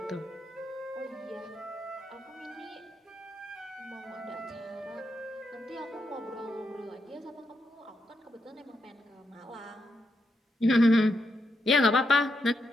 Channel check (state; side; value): normal; both; correlation 0.82